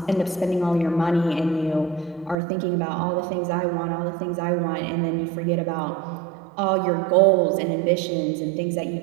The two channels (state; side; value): drops out; left; at 2.4 s